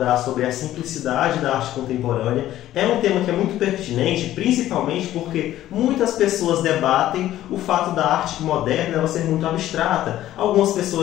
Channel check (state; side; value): quieter; right; 13.5 dB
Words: sobre a simplicidade da arte contemporânea. É um tema que é muito pertinente, principalmente porque muitas pessoas debatem o fato da arte moderna ela ser muito abstrata. Algumas